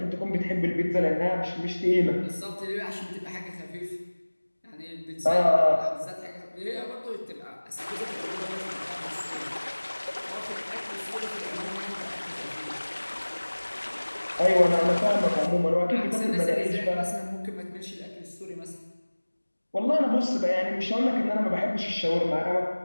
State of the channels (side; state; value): both; inverted; correlation -1.00